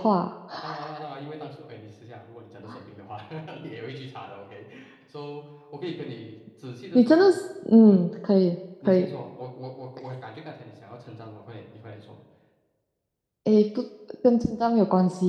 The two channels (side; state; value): both; identical; correlation 1.00